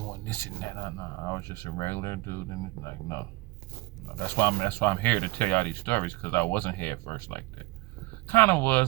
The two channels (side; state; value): left; quieter; 21.0 dB